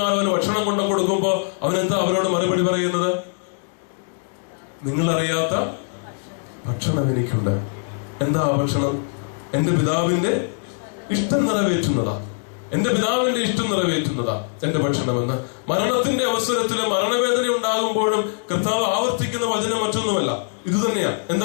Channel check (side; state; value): right; silent; digital silence